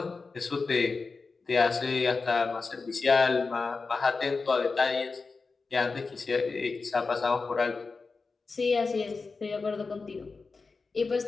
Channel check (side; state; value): right; quieter; 4.3 dB